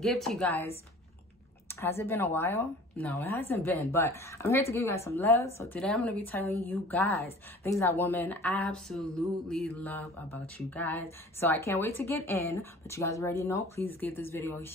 to you guys. Has it been a while? No, it hasn't been, but I'm here to give you guys some love. So today I'm going to be telling you guys things that women absolutely love about you guys. So I can't wait to get in, but you guys already know, please give this video a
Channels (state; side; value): normal; both; correlation 0.45